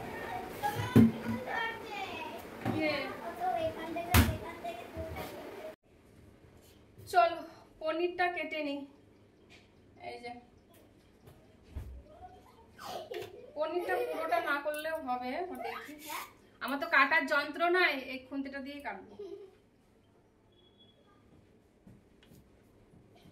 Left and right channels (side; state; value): both; identical; correlation 1.00